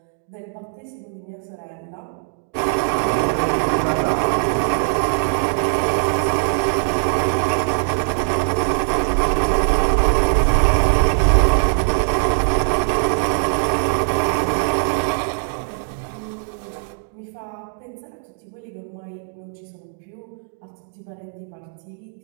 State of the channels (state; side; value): silent; left; digital silence